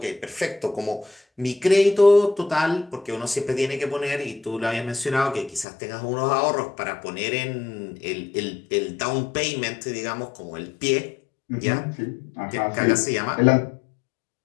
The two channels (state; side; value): drops out; right; at 5.7 s